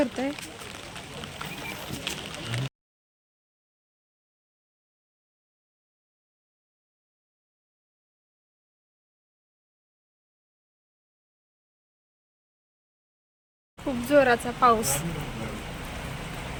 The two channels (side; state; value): both; identical; correlation 1.00